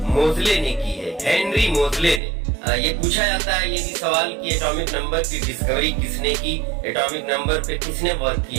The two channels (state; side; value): drops out; left; at 2.2 s